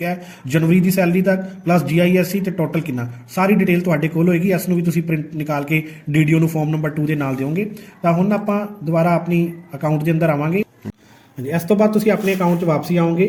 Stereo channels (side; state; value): both; identical; correlation 1.00